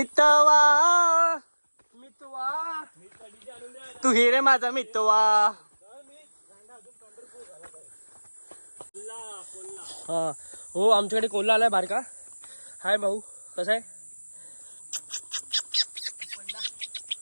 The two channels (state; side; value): inverted; both; correlation -1.00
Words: तू हिरे माझा मितवा. हा हो आमच्याकडे कोल्हा आलाय बारका. हाय भाऊ कसा आहे.